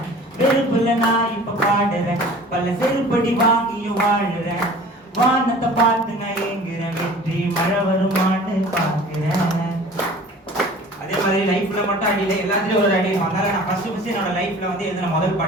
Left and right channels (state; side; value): normal; both; correlation 0.45